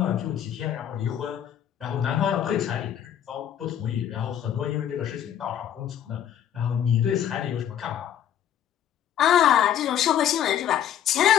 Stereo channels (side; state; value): right; quieter; 10.1 dB